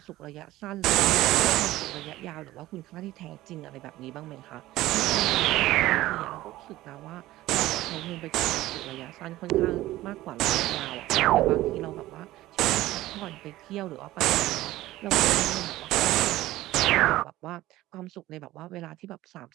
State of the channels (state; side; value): quieter; left; 16.3 dB